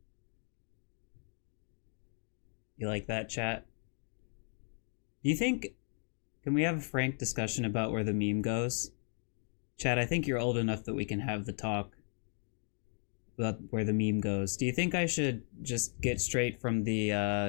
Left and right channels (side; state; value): right; silent; 54 dB below the other